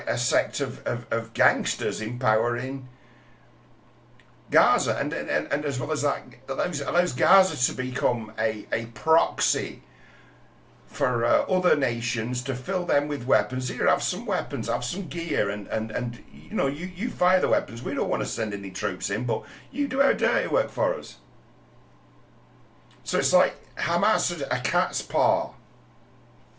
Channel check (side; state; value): both; identical; correlation 1.00